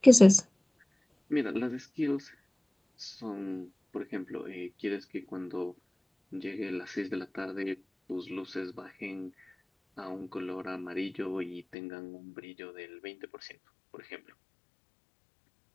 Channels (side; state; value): right; drops out; at 11.8 s